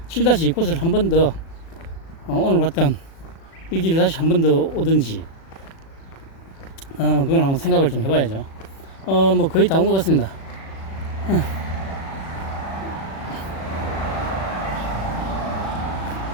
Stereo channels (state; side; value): late; right; 36 ms